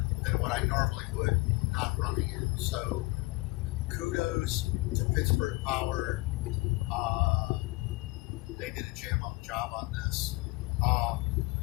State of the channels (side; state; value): right; quieter; 23.5 dB